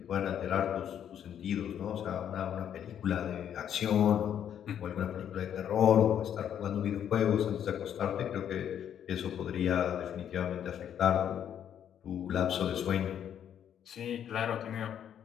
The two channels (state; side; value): quieter; right; 9.4 dB